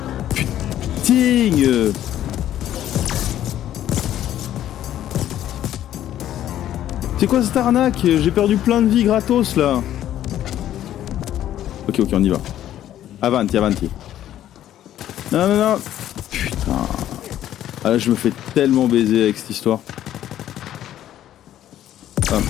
Putain. C'est quoi cette arnaque? J'ai perdu plein de vie gratos là. Ok, on y va. Avanti. Non. Putain. Ah là, je me fais tellement baiser avec cette histoire.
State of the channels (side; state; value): right; quieter; 12.0 dB